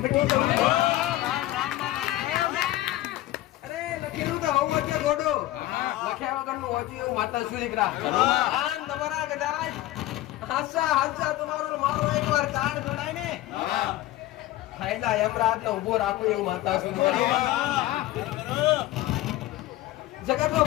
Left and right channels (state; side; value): quieter; right; 15.9 dB